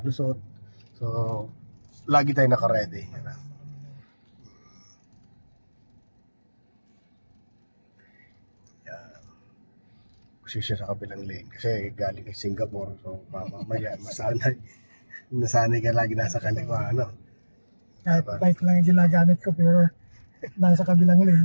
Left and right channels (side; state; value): both; inverted; correlation -1.00